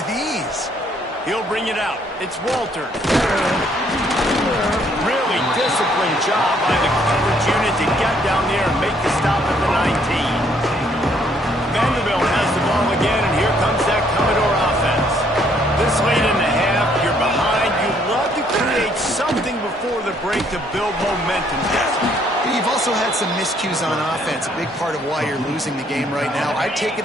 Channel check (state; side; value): normal; both; correlation 0.67